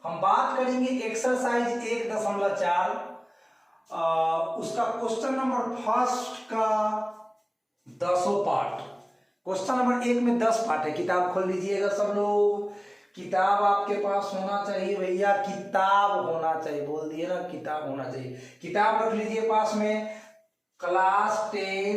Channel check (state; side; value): identical; both; correlation 1.00